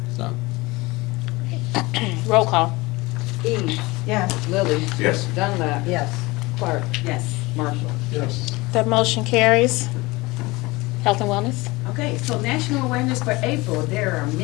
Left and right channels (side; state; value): right; quieter; 22.5 dB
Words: So. Roll call. Eves. Yes. Lily. Yes. Dunlap. Yes. Clark. Yes. Marshall. Yes. That motion carries. Health and wellness. Okay, so national awareness for April, there are